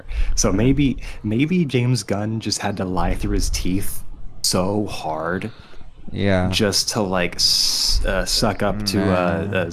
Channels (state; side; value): identical; both; correlation 1.00